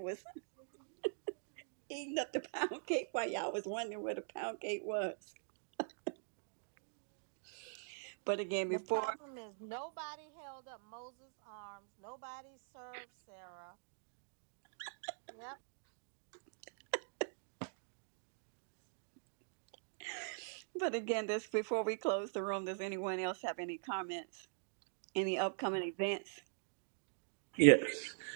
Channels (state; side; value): silent; left; digital silence